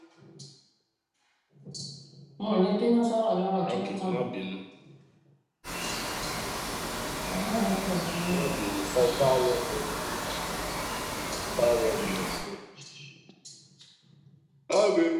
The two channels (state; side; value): identical; both; correlation 1.00